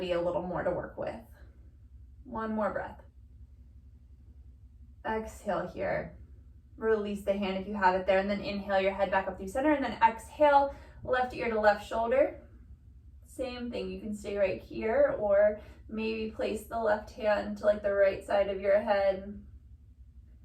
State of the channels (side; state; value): both; identical; correlation 1.00